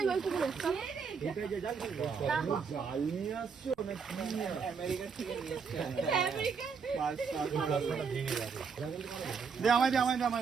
পুকুরে। জাল নিয়ে আসছো আমেরিকা থেকে নিয়ে এসছে।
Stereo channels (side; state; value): left; quieter; 5.8 dB